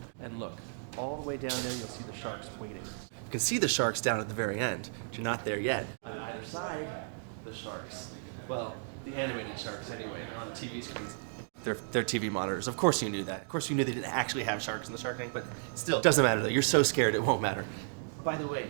And look, all the way down there you'll see the sharks waiting. You can see the sharks down at the very end, but you're not there yet. On either side, the sharks. Well, the animated sharks anyway. They're on the TV screens. They're TV monitors. Of course you knew that. Of course you knew they didn't actually have sharks in the Shark Tank, but still, it doesn't matter though. You're so scared it won't matter. By the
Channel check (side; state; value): left; silent; digital silence